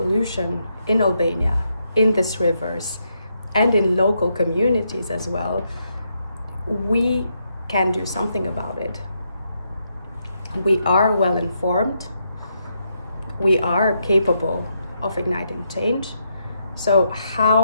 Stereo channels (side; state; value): both; inverted; correlation -0.80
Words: in Albania, in these rivers, and in local communities as well. We can do something about it. We are well informed. We are capable of igniting change. So